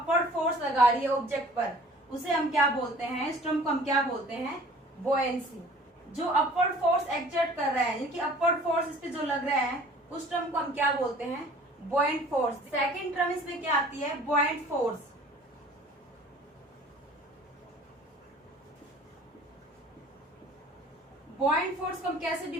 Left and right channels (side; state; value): both; normal; correlation 0.49